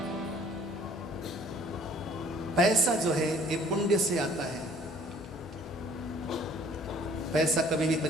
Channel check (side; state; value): both; normal; correlation 0.55